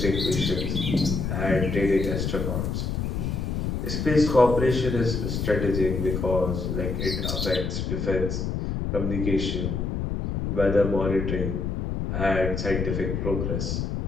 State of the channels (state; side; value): noise; left; rumble, 2 dB below the sound